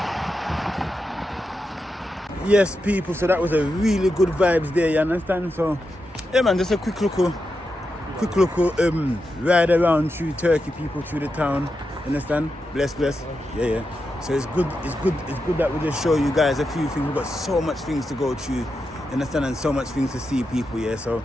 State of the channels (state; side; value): normal; both; correlation 0.88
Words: Yes, people, so that was a really good vibes there, you understand? So, yeah, man, just a quick little ride around through Turkey, people, through the town, understand? Bless. Yeah. So it's good that we just show you guys a few things. We've got so much things to go through, you understand, and so much things to see, people, yeah. So,